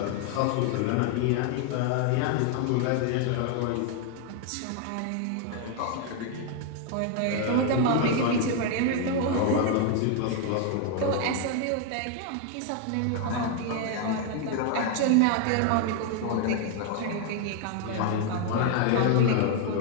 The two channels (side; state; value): both; different; correlation 0.01